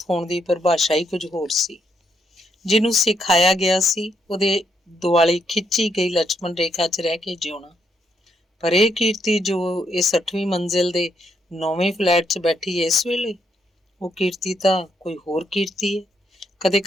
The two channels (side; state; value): both; normal; correlation 0.77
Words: ਹੋਣ ਦੀ ਪਰਿਭਾਸ਼ਾ ਹੀ ਕੁਝ ਹੋਰ ਸੀ। ਜਿਹਨੂੰ ਸਿਖਾਇਆ ਗਿਆ ਸੀ ਉਹਦੇ ਦੁਆਲੇ ਖਿੱਚੀ ਗਈ ਲక్ష్మణ ਰੇਖਾ 'ਚ ਰਹਿ ਕੇ ਜਿਉਣਾ। ਪਰ ਇਹ ਕੀਰਤੀ ਜੋ ਇਸ 8ਵੀਂ ਮੰਜ਼ਿਲ ਦੇ 9ਵੇਂ ਫਲੈਟ 'ਚ ਬੈਠੀ ਹੈ ਇਸ ਵੇਲੇ, ਉਹ ਕੀਰਤੀ ਤਾਂ ਕੋਈ ਹੋਰ ਕੀਰਤੀ ਹੈ। ਕਦੇ